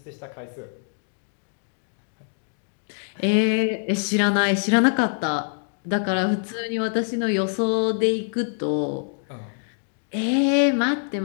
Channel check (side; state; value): right; silent; digital silence